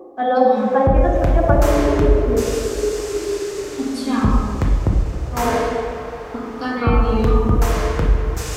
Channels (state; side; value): identical; both; correlation 1.00